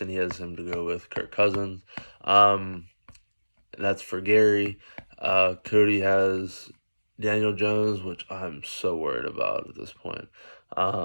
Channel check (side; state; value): both; inverted; correlation -1.00